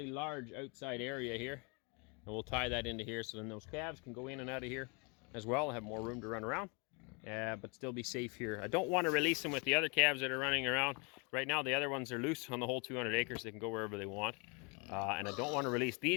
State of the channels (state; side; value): quieter; right; 32.1 dB